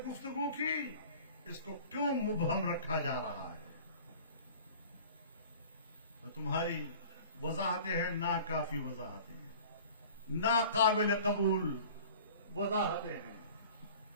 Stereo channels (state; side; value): inverted; both; correlation -0.44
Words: گفتگو کی؟ اس کو کیوں مبہم رکھا جا رہا ہے؟ تو تمہاری وضاحتیں ہیں ناکافی وضاحتیں ہیں, ناقابل قبول وضاحتیں ہیں.